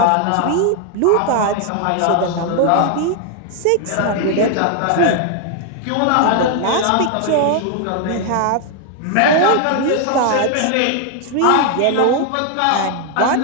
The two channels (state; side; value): different; both; correlation 0.00